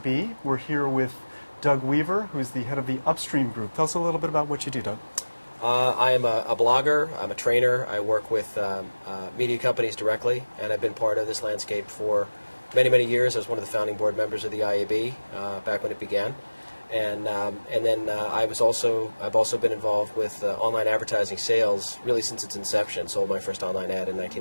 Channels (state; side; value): inverted; both; correlation -1.00